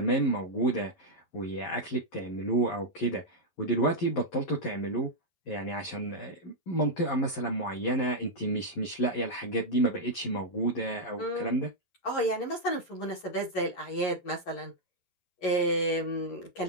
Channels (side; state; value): right; late; 11 ms